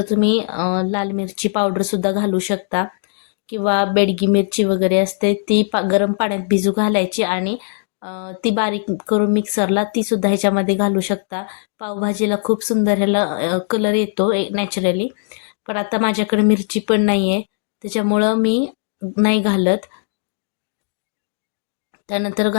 तुम्ही लाल मिरची पावडरसुद्धा घालू शकता किंवा बेडगी मिरची वगैरे असते ती गरम पाण्यात भिजू घालायची आणि ती बारीक करून मिक्सरला तीसुद्धा ह्याच्यामध्ये घालू शकता. पावभाजीला खूप सुंदर ह्याला कलर येतो नॅचरली. पण आता माझ्याकडे मिरची पण नाही आहे, त्याच्यामुळं मी नाही घालत. त्यानंतर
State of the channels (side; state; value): right; silent; digital silence